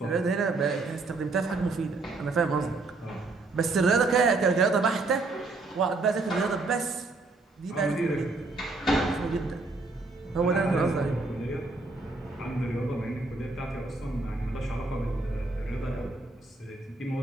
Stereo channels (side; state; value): left; quieter; 3.4 dB